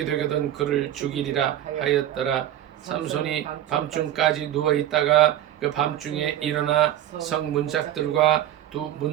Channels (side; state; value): left; quieter; 11.9 dB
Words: 되거든 그를 죽이리라 하였더라. 삼손이 밤중까지 누워 있다가 그 밤중에 일어나 성 문짝들과 두